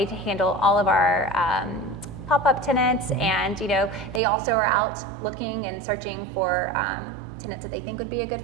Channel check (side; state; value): left; drops out; at 4.2 s